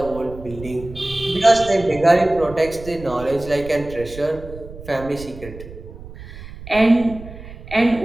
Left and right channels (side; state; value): right; noise; rumble, 14 dB below the sound